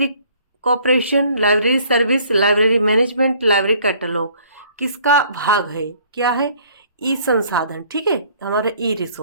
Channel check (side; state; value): both; inverted; correlation -0.58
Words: cooperation, library service, library management, library catalogue. किसका भाग है, क्या है, ई संसाधन। ठीक है, हमारा ई